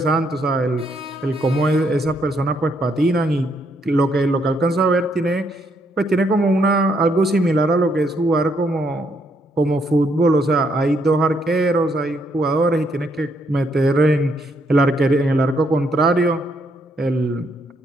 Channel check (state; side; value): normal; both; correlation 0.74